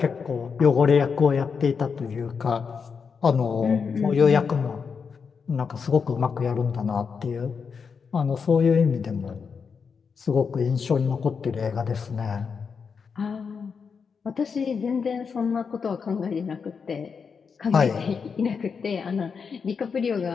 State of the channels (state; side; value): quieter; right; 5.8 dB